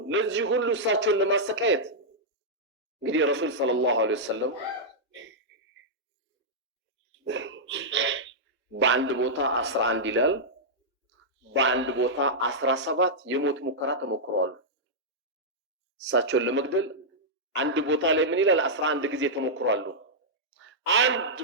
ለዚህ ሁሉ እሳቸውን ለማሰቃየት እንግዲህ ረሱል ሰለላሁ ዐለይሂ ወሰለም በአንድ ቦታ 11 ይላል፣ በአንድ ቦታ 17 የሞት ሙከራ ተሞክረዋል። እሳቸውን ለመግደል አንድ ቦታ ላይ ምን ይላል? 11 ጊዜ ተሞክሯል። አንድ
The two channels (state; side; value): normal; both; correlation -0.09